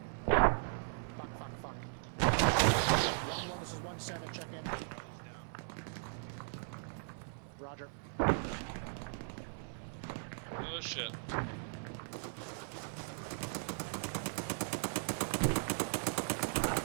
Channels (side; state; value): left; silent; 52 dB below the other